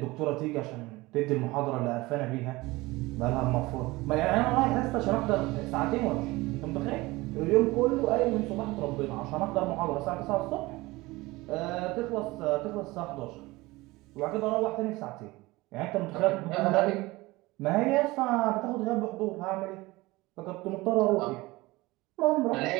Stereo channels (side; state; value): left; quieter; 20.9 dB